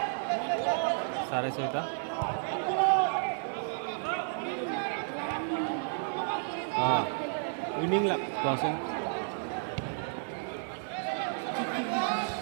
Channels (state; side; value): silent; left; 57 dB below the other